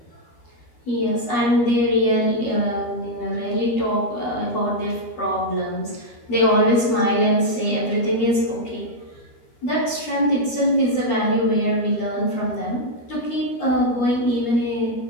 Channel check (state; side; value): late; right; 13 ms